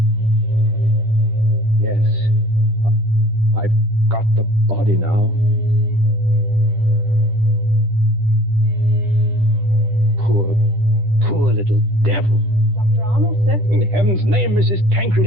Yes. I've got the body now. Poor little devil. Dr. Arnold, sir. In heaven's name, Mrs. Tancred,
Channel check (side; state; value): left; late; 10 ms